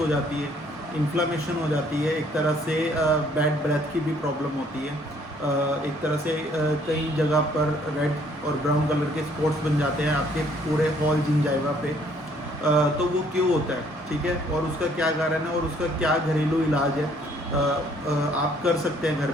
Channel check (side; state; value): both; normal; correlation 0.63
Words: जाती है, इन्फ्लामेशन हो जाती है, एक तरह से बैड ब्रेथ की भी प्रॉब्लम होती है। एक तरह से कई जगह पर रेड और ब्राउन कलर के स्पॉट्स बन जाते हैं आपके पूरे हॉल जिंजाइवा पे। तो वो क्यों होता है, ठीक है, और उसका क्या कारण है और उसका क्या घरेलू इलाज है आप कर सकते हैं घर